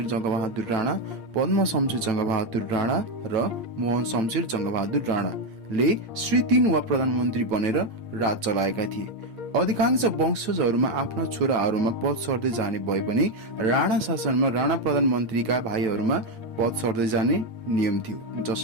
जङ्गबहादुर राणा, पद्म शमशेर जङ्गबहादुर राणा र मोहन शमशेर जङ्गबहादुर राणाले श्री 3 वा प्रधानमन्त्री बनेर राज चलाएका थिए। अधिकांश वंशजहरूमा आफ्ना छोराहरूमा पद सर्दै जाने भए पनि राणा शासनमा राणा प्रधानमन्त्रीका भाइहरूमा पद सर्दै जाने नियम थियो,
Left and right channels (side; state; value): left; late; 8.6 ms